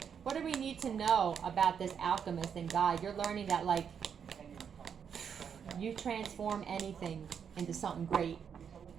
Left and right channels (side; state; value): left; quieter; 7.4 dB